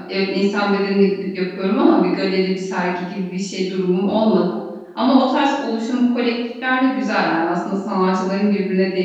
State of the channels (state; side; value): identical; both; correlation 1.00